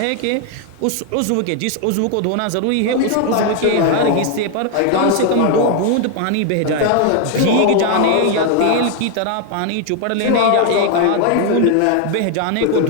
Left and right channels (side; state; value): both; different; correlation 0.01